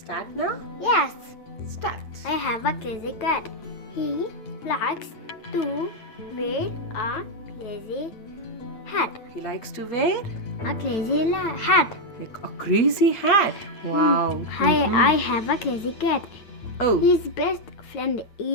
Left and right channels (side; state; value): right; late; 8.9 ms